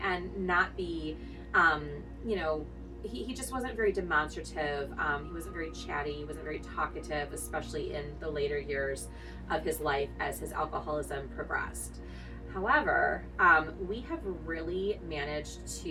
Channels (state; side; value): identical; both; correlation 1.00